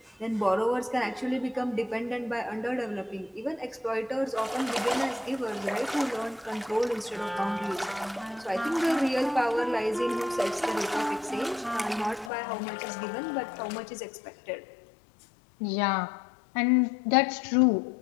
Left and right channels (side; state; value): right; drops out; at 12.3 s